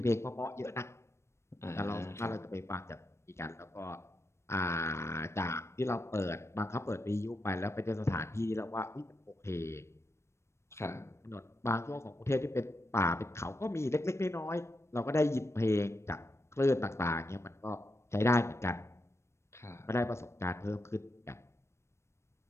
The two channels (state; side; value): late; right; 0.13 ms